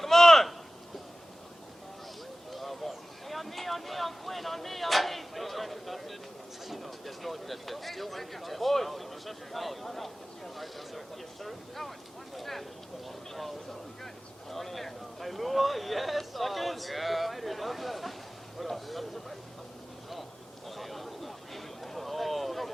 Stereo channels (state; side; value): normal; both; correlation 0.97